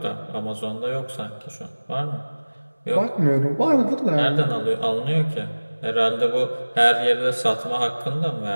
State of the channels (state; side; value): inverted; both; correlation -1.00